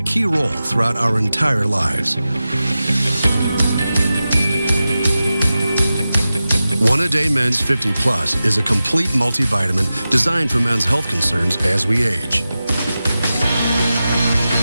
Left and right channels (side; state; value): both; inverted; correlation -0.94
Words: role throughout our entire lives. One A Day Men's 50 Plus is a complete multivitamin designed for men's health concerns as we age.